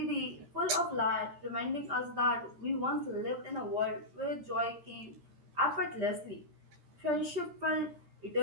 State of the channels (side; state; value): left; late; 13 ms